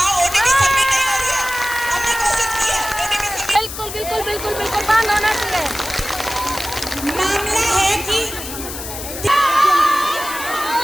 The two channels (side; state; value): left; noise; hiss, 9 dB below the sound